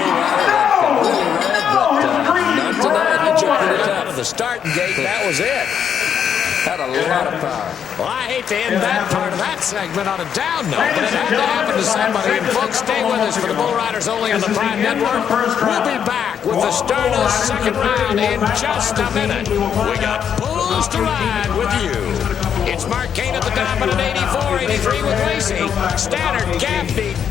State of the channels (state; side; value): quieter; right; 8.2 dB